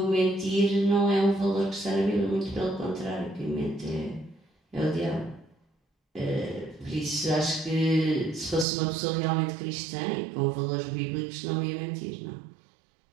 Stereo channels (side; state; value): left; drops out; at 8.7 s